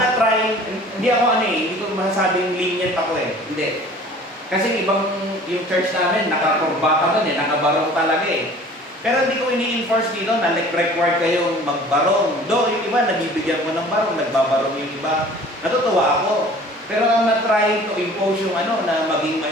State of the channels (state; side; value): normal; both; correlation 0.48